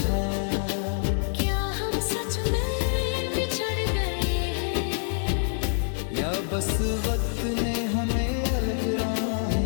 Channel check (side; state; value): right; silent; 61 dB below the other